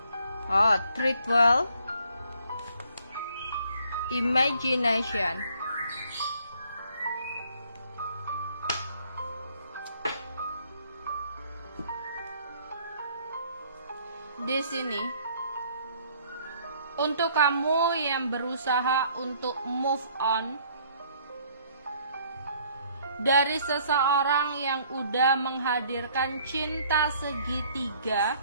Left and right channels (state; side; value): inverted; both; correlation -0.61